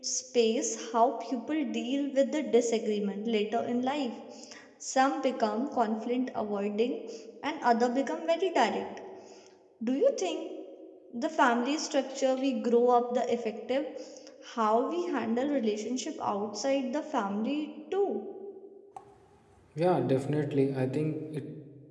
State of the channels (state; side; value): identical; both; correlation 1.00